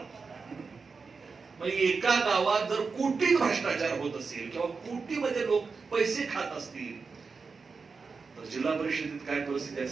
एका गावात जर कोटीत भ्रष्टाचार होत असेल किंवा कोटीमध्ये लोक पैसे खात असतील तर जिल्हा परिषदेत काय परिस्थिती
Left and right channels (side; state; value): left; quieter; 4.8 dB